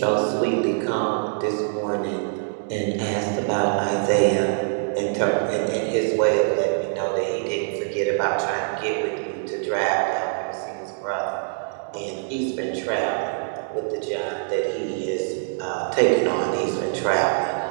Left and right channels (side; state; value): left; silent; digital silence